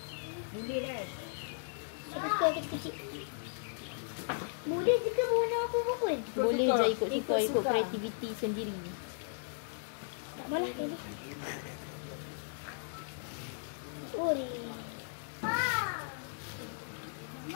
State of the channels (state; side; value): silent; right; digital silence